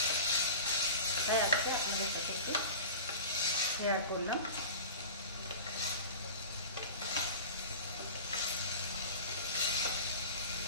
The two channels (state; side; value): inverted; both; correlation -0.36